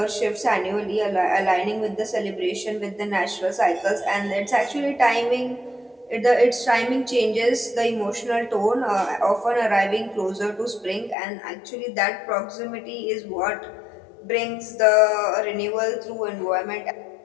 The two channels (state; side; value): drops out; right; at 11.2 s